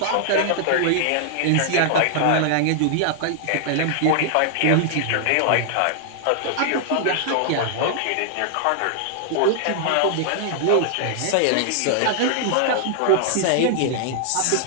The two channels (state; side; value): different; both; correlation -0.01